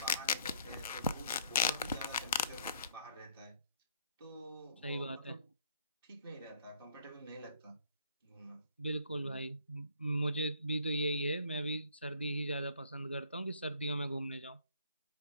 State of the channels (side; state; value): both; inverted; correlation -0.62